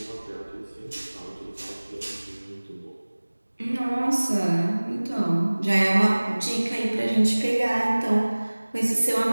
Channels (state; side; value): inverted; both; correlation -1.00